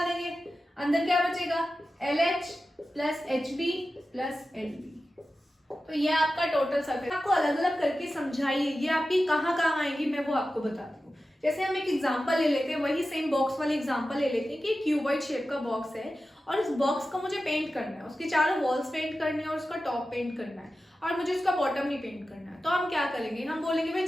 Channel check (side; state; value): both; normal; correlation 0.93